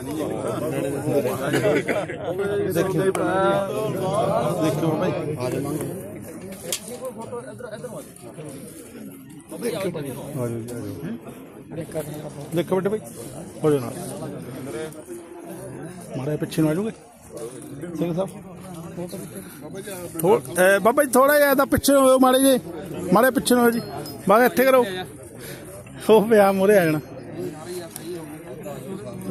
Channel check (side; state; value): both; identical; correlation 1.00